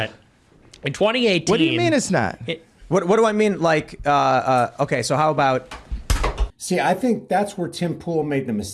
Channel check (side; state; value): both; identical; correlation 1.00